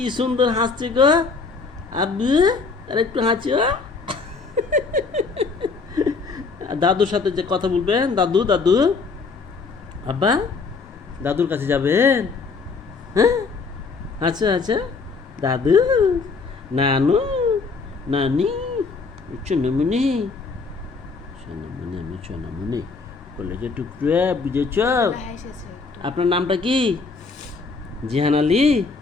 সুন্দর হাসছে গো। আব্বু আর একটু হাসিও। আর দাদুর সাথে যে কথা বলবেন, দাদু দাদু, আব্বা দাদুর কাছে যাবেন? হ্যাঁ, আচ্ছা আচ্ছা, দাদু, নানু, নানি, সোনামণি, সোনামণি, আমি সোনামণি, কলেজে টুকরে, বুঝেছ? আপনার নামটা কি? জিহান আলী।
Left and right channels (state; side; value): quieter; right; 4.4 dB